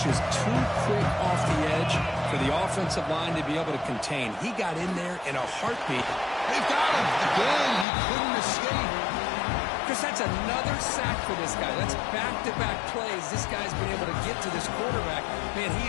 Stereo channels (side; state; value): right; drops out; at 7.9 s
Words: just too quick off the edge for the offensive line to be able to contain. He got in there in a heartbeat. They've got him. Again, he couldn't escape. Because that's another sack for this guy. That's back-to-back plays. This guy's been able to get to this quarterback. Man,